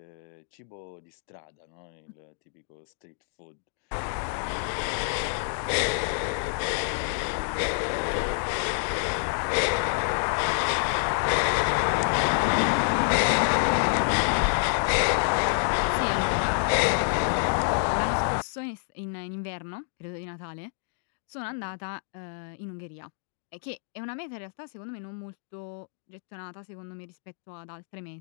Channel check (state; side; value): silent; right; digital silence